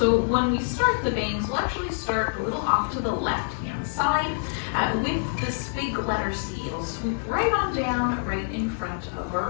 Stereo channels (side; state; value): right; silent; digital silence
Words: when we start the bangs, we'll actually start a little off to the left-hand side with this big letter C. It'll swoop right on down, right in front of